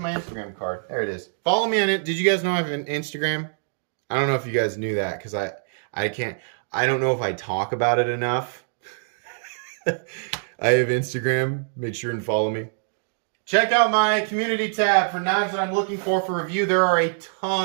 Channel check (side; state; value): left; silent; digital silence